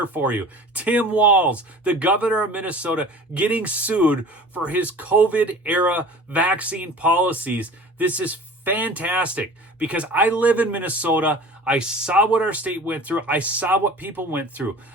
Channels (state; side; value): normal; both; correlation 0.42